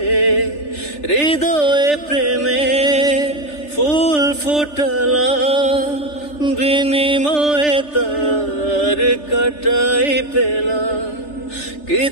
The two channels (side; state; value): right; late; 3.4 ms